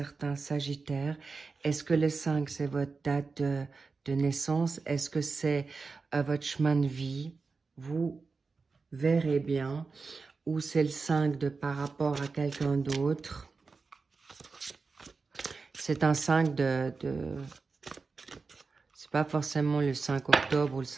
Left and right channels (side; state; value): left; quieter; 4.4 dB